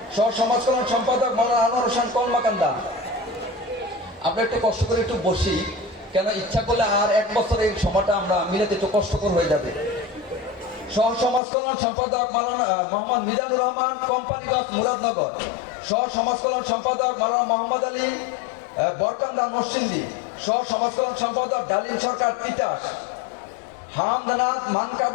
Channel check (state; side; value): drops out; right; at 11.4 s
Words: সহ সমাজ কল্যাণ সম্পাদক মাওলানা আনোয়ার হোসেন, কলমাকান্দা। আমরা একটু কষ্ট করে একটু বসি, কেন ইচ্ছা করলে আর এক বছর এই সময়টা আমরা মিলাতে একটু কষ্টকর হয়ে যাবে। সহ সমাজ কল্যাণ সম্পাদক মাওলানা মোহাম্মদ মিজানুর রহমান, কোম্পানিগঞ্জ, মুরাদনগর। সহ সমাজ কল্যাণ সম্পাদক মাওলানা মোহাম্মদ আলী, বরকান্দা, নরসিংদী। সহ সমাজ কল্যাণ সম্পাদক ডালিম সরকার, তিতাস। হামদানাথ